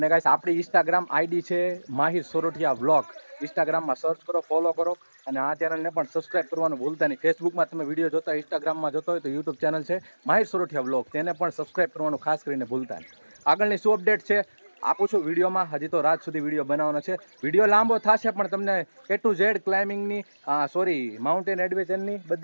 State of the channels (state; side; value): inverted; both; correlation -1.00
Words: ગાઈસ આપણી ઇન્સ્ટાગ્રામ આઈડી છે માહિર સોરઠિયા વ્લોગ. ઇન્સ્ટાગ્રામમાં સર્ચ કરો, ફોલો કરો, અને આ ચેનલને પણ સબસ્ક્રાઇબ કરવાનું ભૂલતા નહીં. ફેસબુકમાં તમે વિડીયો જોતા હોય, ઇન્સ્ટાગ્રામમાં જોતા હોય તો યુટ્યુબ ચેનલ છે માહિર સોરઠિયા વ્લોગ, તેને પણ સબસ્ક્રાઇબ કરવાનું ખાસ કરીને ભૂલતા નહીં. આગળની શું અપડેટ છે આપું છું વિડીયોમાં. હજી તો રાત સુધી વિડીયો બનાવવાનો છે. વિડીયો લાંબો થશે પણ તમને A to Z ક્લાઇમ્બિંગની માઉન્ટેન એડવેન્ચરની